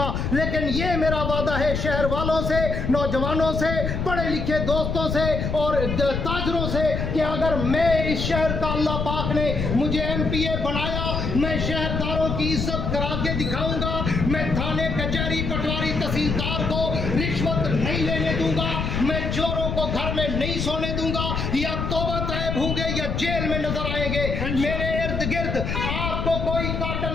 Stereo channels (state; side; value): noise; left; rumble, 2 dB below the sound